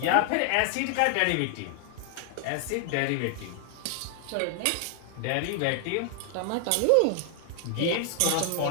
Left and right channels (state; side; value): different; both; correlation 0.00